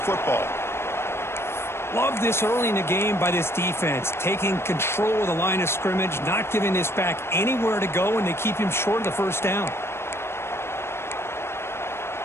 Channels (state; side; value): late; right; 0.12 ms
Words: Love this early in the game by this defense, taking control of the line of scrimmage, not giving this back anywhere to go, and they keep him short of the first down.